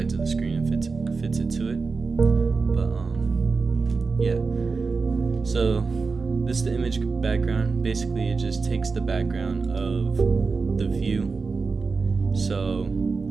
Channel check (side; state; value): left; quieter; 4.5 dB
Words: of the screen and fits it to it. But yeah. So this is the image background. Basically, it just takes the background of the view. So